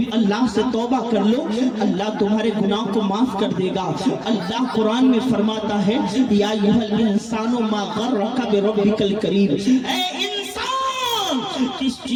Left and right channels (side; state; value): both; identical; correlation 1.00